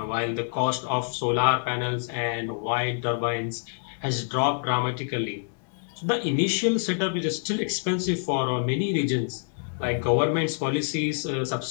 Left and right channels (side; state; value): right; silent; digital silence